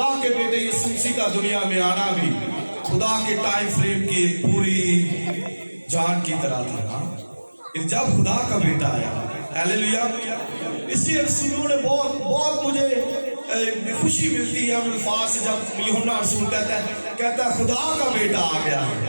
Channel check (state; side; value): inverted; both; correlation -1.00